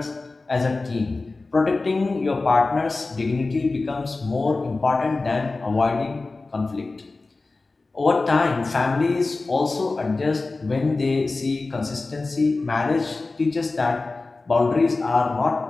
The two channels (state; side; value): quieter; right; 3.5 dB